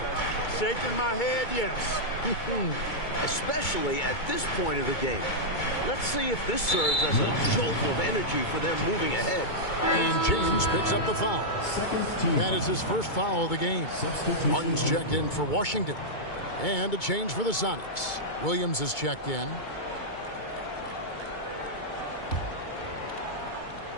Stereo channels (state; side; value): late; right; 2.2 ms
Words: Shaking my head, yes. Especially at this point of the game. Let's see if this serves as a jolt of energy for them moving ahead. And James picks up the foul. That is his first foul of the game. Martin's checked in for Washington. And a change for the Sonics. Williams is checked in.